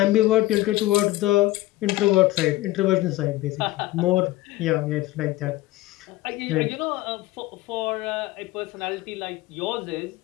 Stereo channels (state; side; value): quieter; right; 17.8 dB